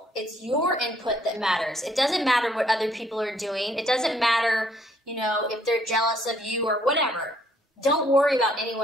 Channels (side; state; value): both; normal; correlation 0.66